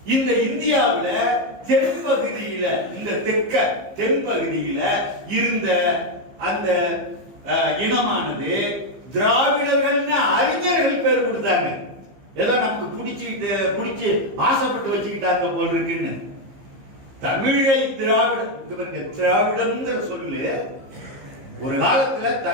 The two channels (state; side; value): late; left; 15 ms